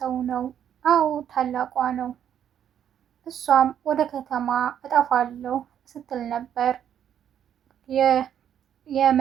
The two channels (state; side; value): quieter; left; 9.5 dB